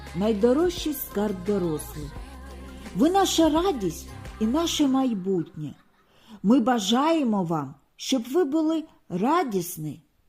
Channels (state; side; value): identical; both; correlation 1.00